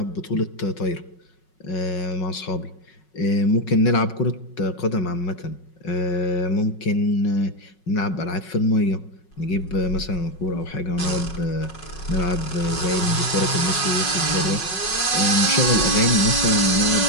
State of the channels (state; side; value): late; right; 5.5 ms